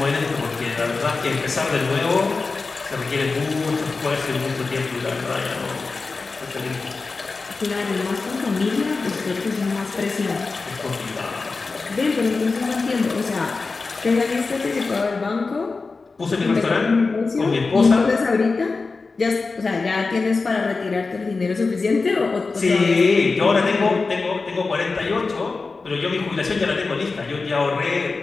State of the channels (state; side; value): quieter; right; 4.1 dB